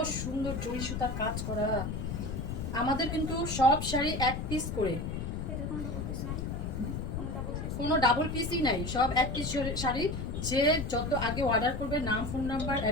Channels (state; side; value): noise; left; rumble, 4 dB below the sound